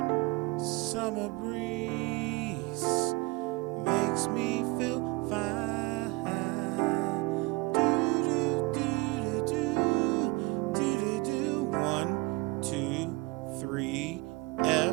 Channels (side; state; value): left; quieter; 24.8 dB